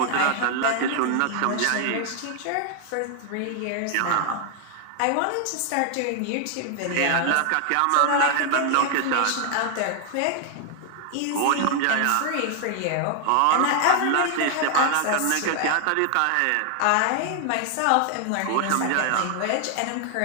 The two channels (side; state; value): both; different; correlation 0.00